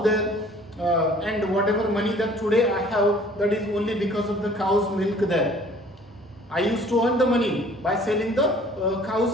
and whatever money that today I have, that is only because of the cow's milk there. I used to earn the money by selling the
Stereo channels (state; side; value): normal; both; correlation 0.53